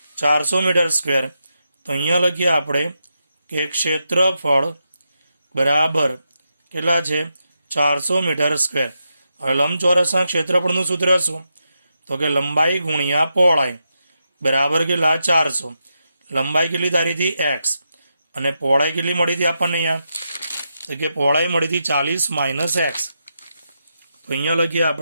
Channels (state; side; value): inverted; both; correlation -0.85